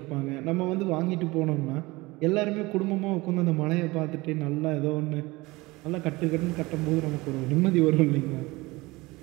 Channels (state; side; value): quieter; left; 21.9 dB